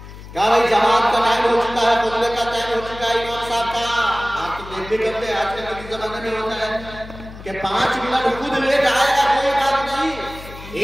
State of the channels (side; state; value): left; noise; hum, 15 dB below the sound